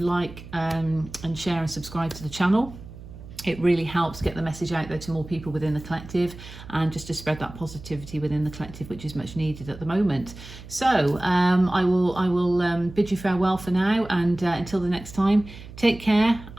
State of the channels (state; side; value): noise; right; hum, 16 dB below the sound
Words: and share and subscribe to the channel. It really helps get the message out there to more people within the collective, and just to spread that positivity within the collective, which is much needed at the moment. So I will bid you farewell for now, and until the next time, take care,